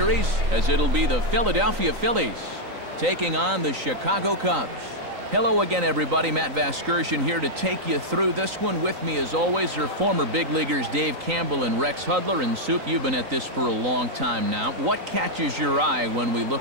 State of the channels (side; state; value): left; late; 3.9 ms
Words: as it'll be the Philadelphia Phillies taking on the Chicago Cubs. Hello again, everybody. Matt Vasgersian here to take you through this one. With me, as always, are former big leaguers Dave Campbell and Rex Hudler. And Soup, you've been at this for a long time now. What catches your eye when we